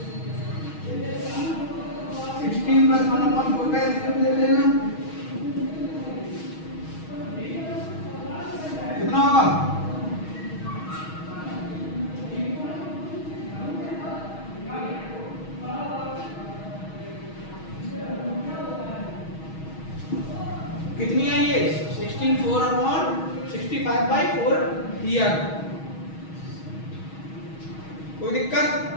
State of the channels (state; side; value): late; right; 6.3 ms